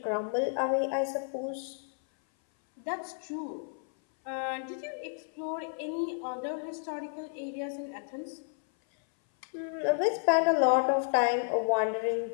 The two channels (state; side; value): silent; right; 57 dB below the other